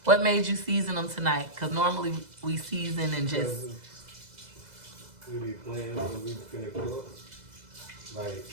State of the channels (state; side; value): late; left; 2.0 ms